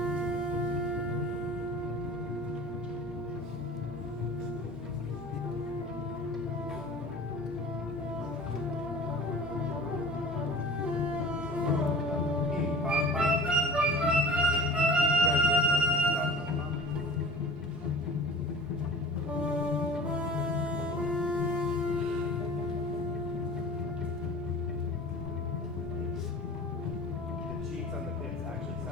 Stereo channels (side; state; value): both; normal; correlation 0.41